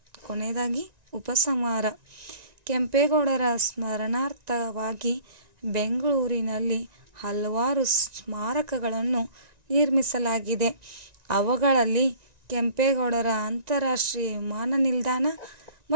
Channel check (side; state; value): left; late; 1.9 ms